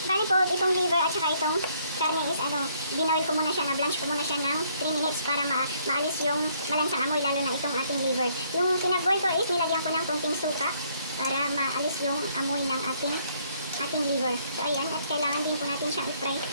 Bali po, itong liver at saka itong karne is binoil ko muna siya, na-blanch ko muna siya ng 3 minutes para maalis yung malansang amoy, lalo na itong ating liver. Yung pinag-boil ko is nilagyan ko ng konting suka para maalis yung amoy ng ating liver. So ayan, at kailangan din po natin siyang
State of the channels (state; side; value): inverted; both; correlation -0.67